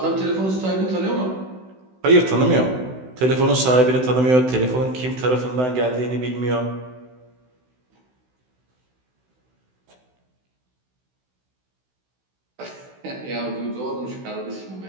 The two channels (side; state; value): left; late; 16 ms